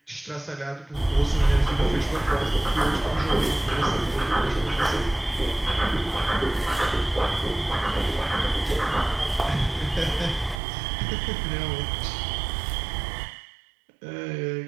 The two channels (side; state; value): left; drops out; at 10.6 s